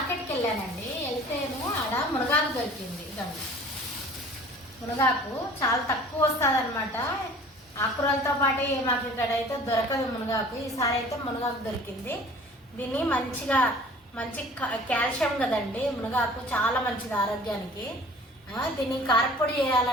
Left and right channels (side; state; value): both; normal; correlation 0.47